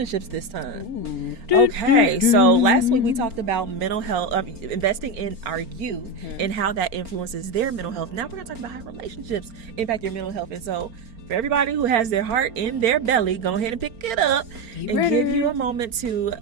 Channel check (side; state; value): left; late; 4.4 ms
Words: this time. Okay, so last week we talked about mental health, investing in our youth and how that influences their mental health. Now we're going to talk about how relationships impact your mental health. And so for everybody who has their heart in their belly, go ahead and pick it up and give you a moment to